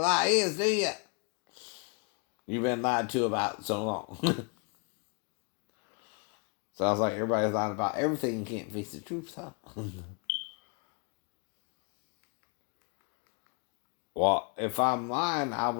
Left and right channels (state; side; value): quieter; right; 36.1 dB